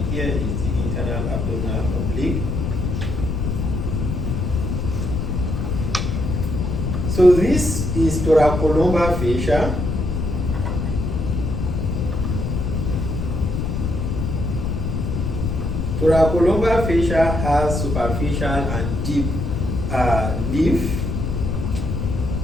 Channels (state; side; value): noise; left; rumble, 1 dB below the sound